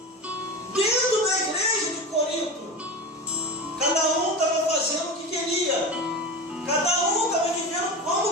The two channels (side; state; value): both; normal; correlation 0.26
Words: dentro da igreja de Corinto. Cada um estava fazendo o que queria, cada um estava vivendo